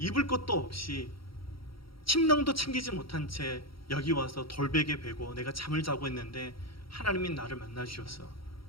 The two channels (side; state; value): right; late; 0.75 ms